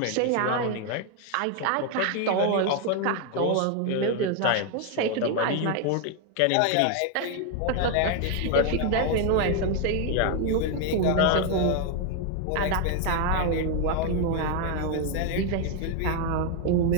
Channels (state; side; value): different; both; correlation 0.01